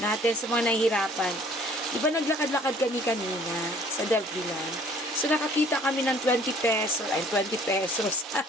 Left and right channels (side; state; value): both; normal; correlation 0.55